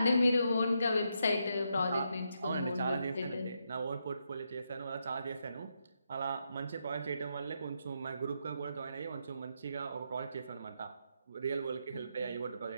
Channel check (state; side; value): inverted; both; correlation -0.81